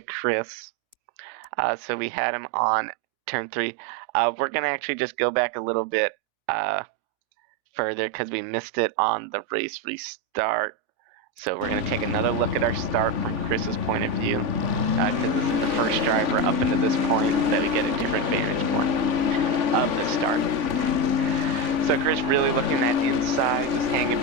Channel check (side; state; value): left; late; 3.5 ms